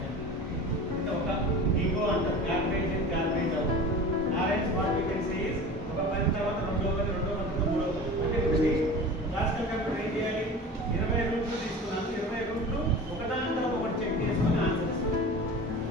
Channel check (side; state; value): both; normal; correlation 0.35